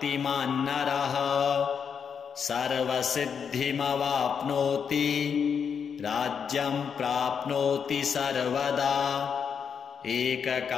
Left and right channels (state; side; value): quieter; right; 6.8 dB